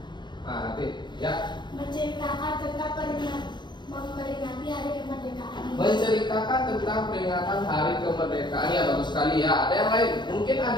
Nah, Ratih, ya. Menceritakan tentang memperingati hari kemerdekaan. Menceritakan tentang peringatan Hari Kemerdekaan, ya bagus sekali ya. Ada yang lain? Mungkin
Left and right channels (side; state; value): right; late; 0.22 ms